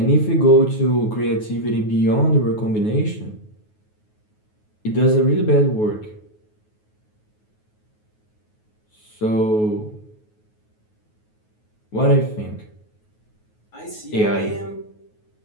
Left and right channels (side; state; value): right; late; 9.4 ms